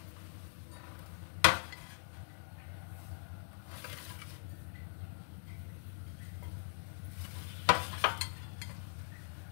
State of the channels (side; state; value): right; silent; digital silence